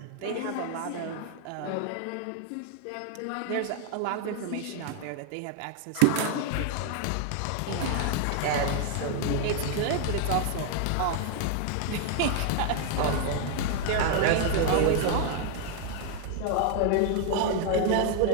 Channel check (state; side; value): different; both; correlation 0.00